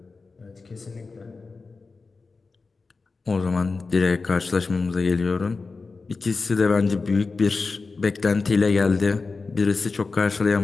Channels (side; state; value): right; quieter; 4.2 dB